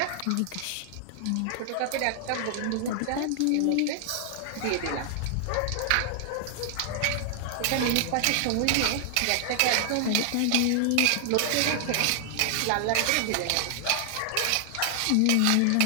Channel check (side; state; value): both; different; correlation 0.00